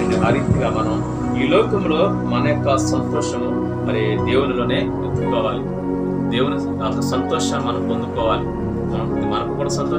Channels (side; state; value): both; identical; correlation 1.00